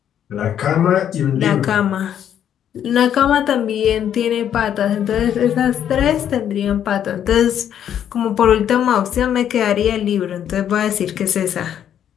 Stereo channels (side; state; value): right; quieter; 9.7 dB